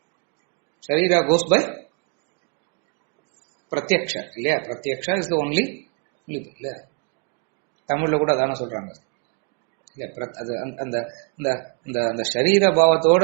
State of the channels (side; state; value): left; quieter; 34.2 dB